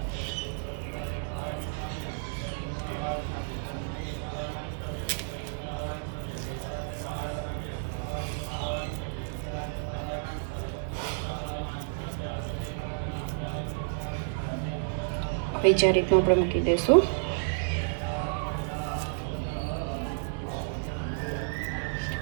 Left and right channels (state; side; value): silent; left; digital silence